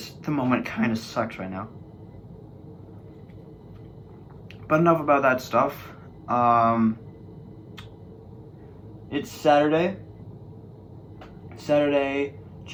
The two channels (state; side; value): identical; both; correlation 1.00